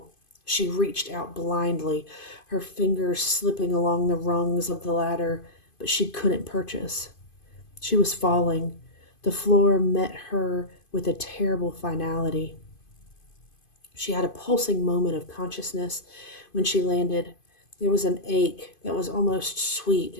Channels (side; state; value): right; late; 2.5 ms